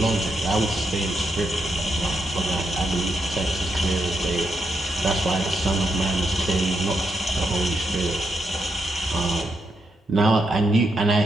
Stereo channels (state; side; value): normal; both; correlation 0.81